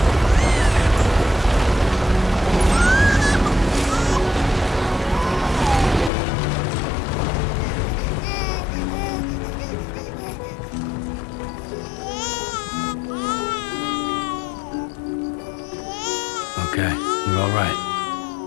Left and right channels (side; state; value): right; drops out; at 6.1 s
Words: Okay, you're all right.